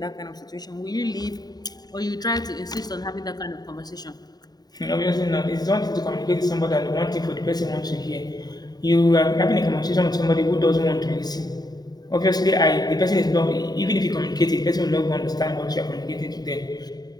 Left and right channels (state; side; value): late; right; 0.19 ms